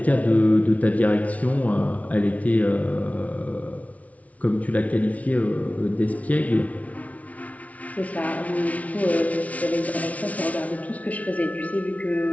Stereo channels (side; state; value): right; late; 0.068 ms